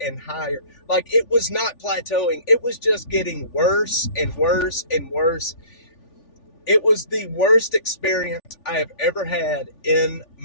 and higher. Like it was not plateauing. It was just getting worse and worse and worse. It was the worst experience I have ever had in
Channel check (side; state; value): right; late; 3.4 ms